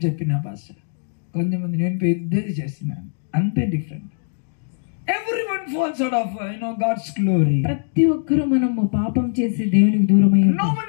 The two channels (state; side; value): silent; right; digital silence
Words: చెప్పిన భాష, కొంతమంది నేను పెద్దది చేసినాను. అంతే different. Everyone falls out of God's glory. ప్రతి ఒక్కరు మనము పాపం చేసి దేవునికి దూరమై No ఉంటాం.